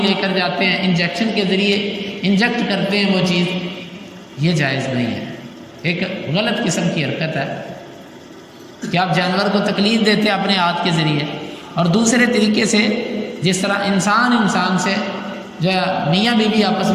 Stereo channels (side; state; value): both; identical; correlation 1.00